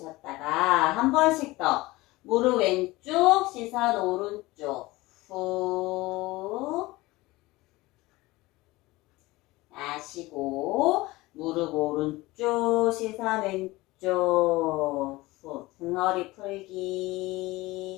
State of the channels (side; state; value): right; quieter; 20.3 dB